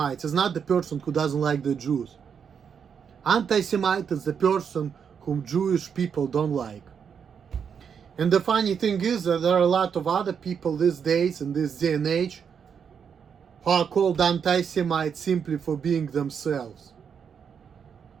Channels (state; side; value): quieter; left; 7.1 dB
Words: is not the person who doesn't like the Jews. Anti-Semite is the person whom Jewish people don't like. And the funny thing is that there are a lot of other people these days, in this day and age, who are called anti-Semites simply for being themselves.